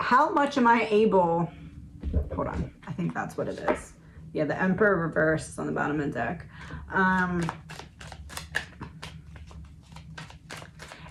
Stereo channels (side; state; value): both; identical; correlation 1.00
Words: am I able, hold on, I think that's what it is. Yeah, the Emperor reverse is on the bottom of the deck.